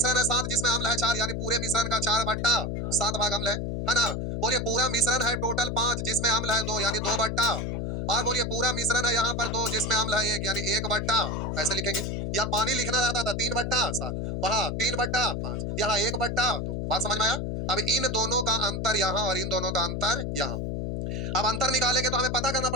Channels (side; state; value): left; noise; hum, 2 dB below the sound